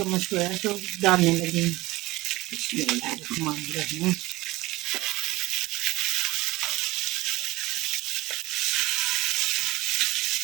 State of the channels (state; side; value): quieter; left; 19.0 dB